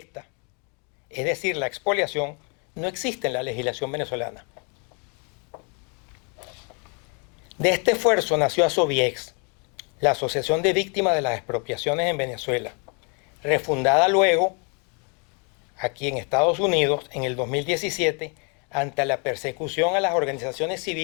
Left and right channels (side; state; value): right; quieter; 36.2 dB